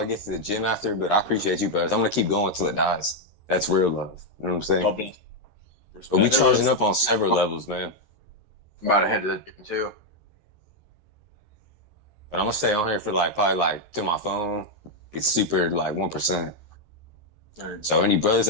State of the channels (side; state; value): left; late; 13 ms